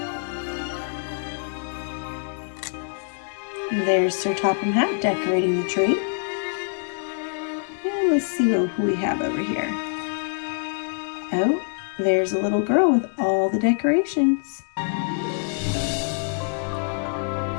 There's Sir Topham Hatt decorating the tree. And let's see who we have over here. Oh, there's a little girl with all the decorations.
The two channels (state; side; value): silent; right; digital silence